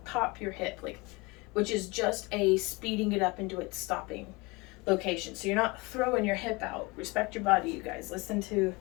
pop your hip, like, which is just a speeding it up into its stopping location. So you're not throwing your hip out. Respect your body, you guys. Listen to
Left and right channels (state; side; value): quieter; right; 25.3 dB